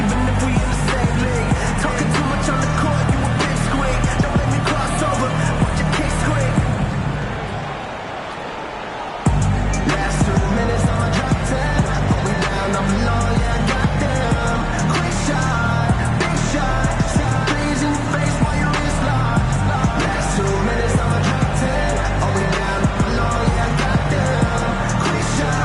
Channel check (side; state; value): both; identical; correlation 1.00